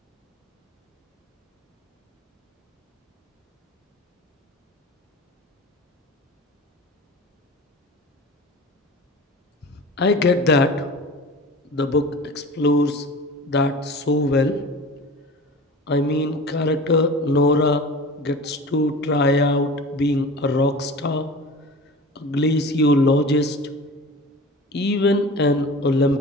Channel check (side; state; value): both; normal; correlation 0.37